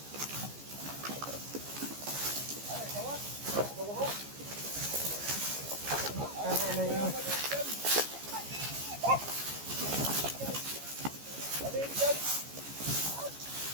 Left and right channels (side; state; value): left; late; 14 ms